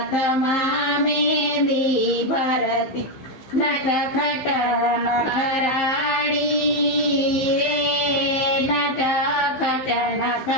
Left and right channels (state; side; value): late; right; 15 ms